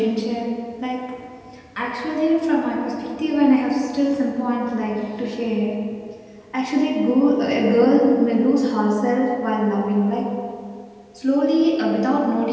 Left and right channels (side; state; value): both; identical; correlation 1.00